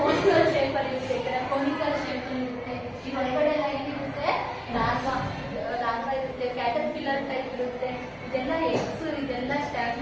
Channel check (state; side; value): identical; both; correlation 1.00